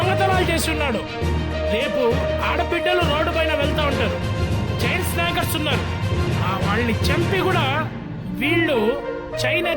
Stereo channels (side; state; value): both; identical; correlation 1.00